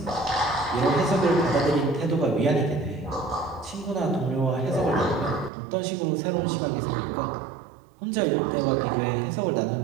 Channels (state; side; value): drops out; left; at 5.5 s